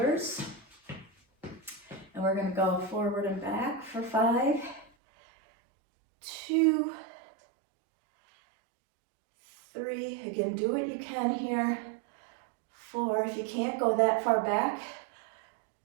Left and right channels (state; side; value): drops out; left; at 4.9 s